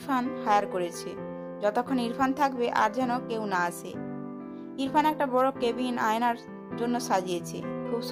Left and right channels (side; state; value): both; identical; correlation 1.00